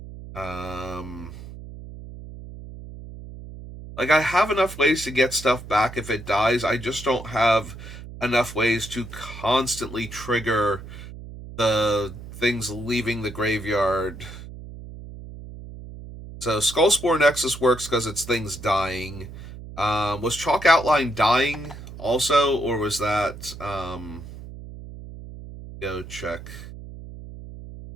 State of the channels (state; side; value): noise; right; hum, 13 dB below the sound